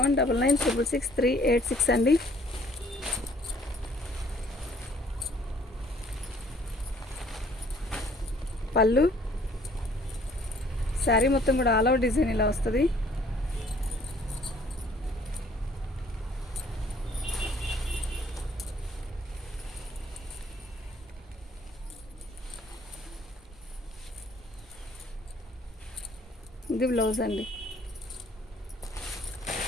అండి. పళ్ళు శారీ మొత్తం కూడా ఆల్ ఓవర్ డిజైన్ ఇలా వస్తుంది. ఇది బ్లౌజ్ అండి.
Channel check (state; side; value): normal; both; correlation 0.59